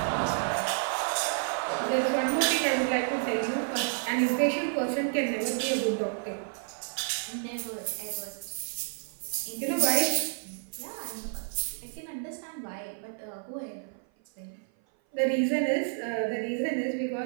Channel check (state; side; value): silent; left; 55 dB below the other